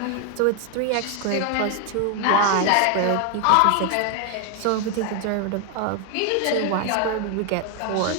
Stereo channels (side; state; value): both; different; correlation 0.01